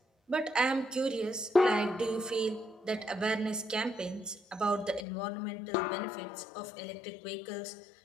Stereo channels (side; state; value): right; drops out; at 5.1 s